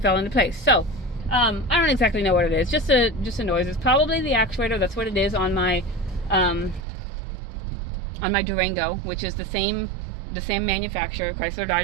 into place. So I don't exactly know what it is, just a noise. It's probably the actuator. That's what it is on my Durango, which is the same manufacturer, Chrysler,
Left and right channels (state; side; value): drops out; left; at 6.8 s